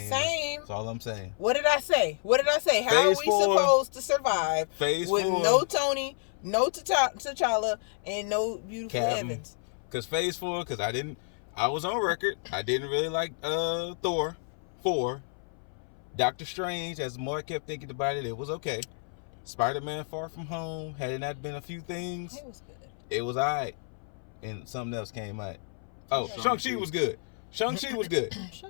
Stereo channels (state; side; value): silent; right; 58 dB below the other